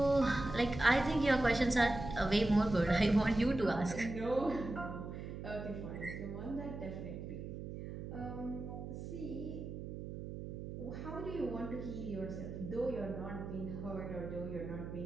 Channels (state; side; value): noise; right; hum, 8 dB below the sound